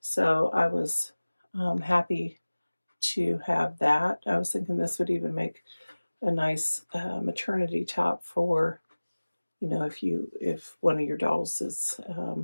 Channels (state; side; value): inverted; both; correlation -1.00